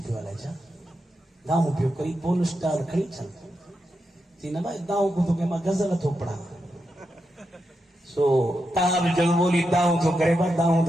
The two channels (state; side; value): normal; both; correlation 0.86